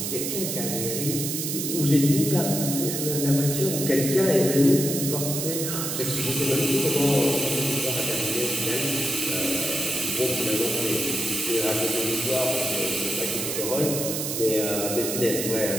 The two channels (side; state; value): right; noise; hiss, 3 dB below the sound